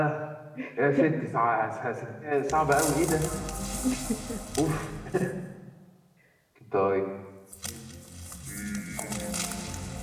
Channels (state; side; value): identical; both; correlation 1.00